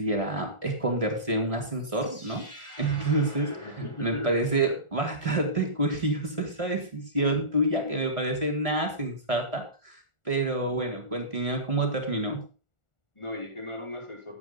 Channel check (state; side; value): late; right; 1.4 ms